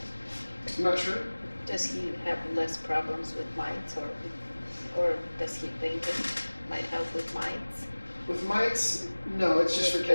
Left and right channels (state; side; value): inverted; both; correlation -1.00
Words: I'm not sure. Does he have less problems with mites, or does he think it might help with mites? With mites, no, it's just for